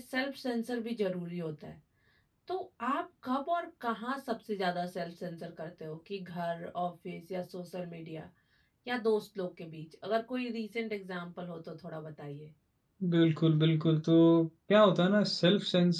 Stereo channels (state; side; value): identical; both; correlation 1.00